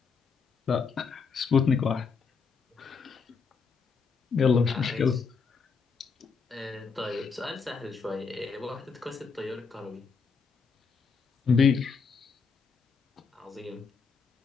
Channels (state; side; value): quieter; right; 5.4 dB